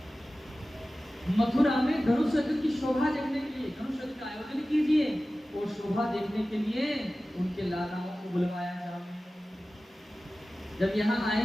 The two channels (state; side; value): normal; both; correlation 0.96